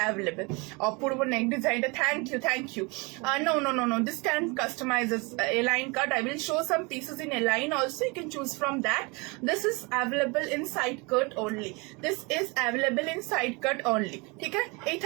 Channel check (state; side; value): quieter; left; 28.4 dB